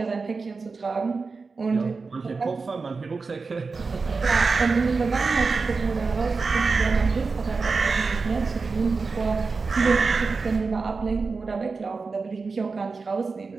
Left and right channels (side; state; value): left; quieter; 4.4 dB